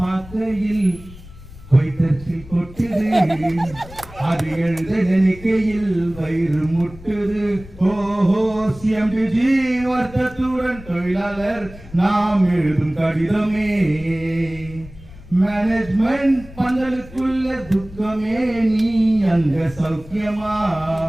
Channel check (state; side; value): noise; left; rumble, 19 dB below the sound